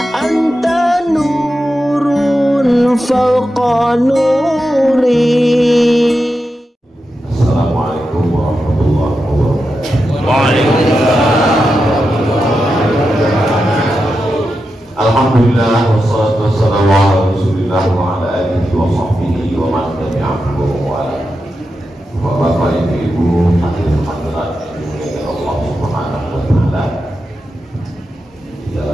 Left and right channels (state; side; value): normal; both; correlation 0.89